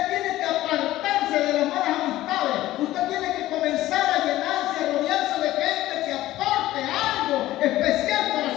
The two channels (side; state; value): right; quieter; 15.4 dB